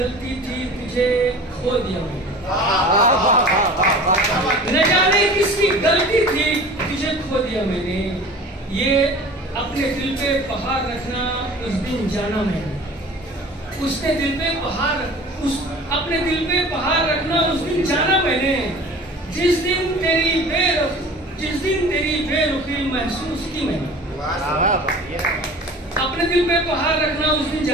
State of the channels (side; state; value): both; normal; correlation 0.42